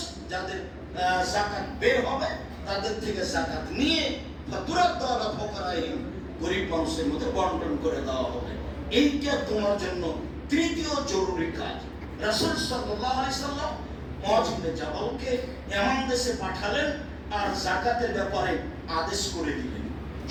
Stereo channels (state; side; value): identical; both; correlation 1.00